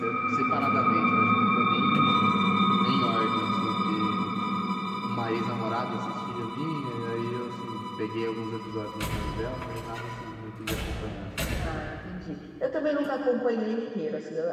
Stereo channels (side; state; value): both; identical; correlation 1.00